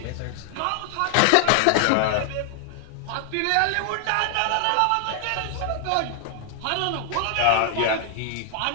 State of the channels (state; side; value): different; both; correlation 0.00